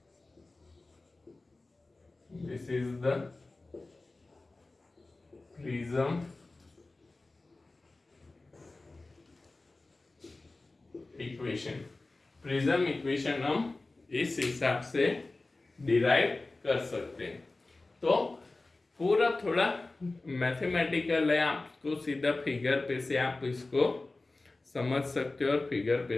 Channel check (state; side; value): quieter; right; 3.2 dB